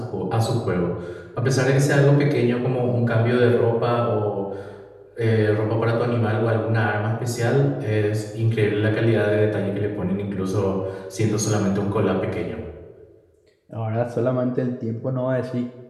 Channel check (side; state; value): both; identical; correlation 1.00